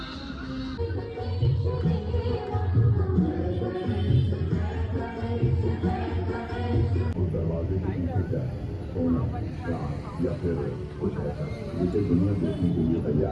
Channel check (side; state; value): both; identical; correlation 1.00